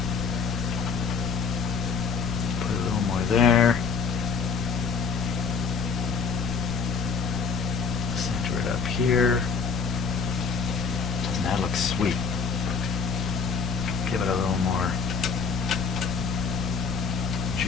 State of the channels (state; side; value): quieter; right; 5.5 dB